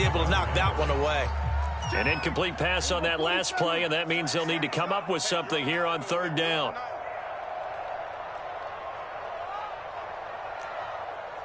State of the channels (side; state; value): both; identical; correlation 1.00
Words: to knock that one away. An incomplete pass on that last play, and that means they'll need to come up with something here on 3rd down.